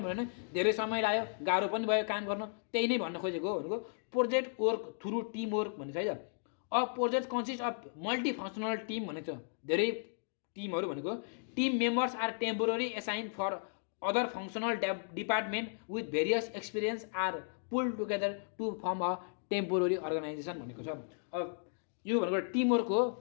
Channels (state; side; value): silent; right; digital silence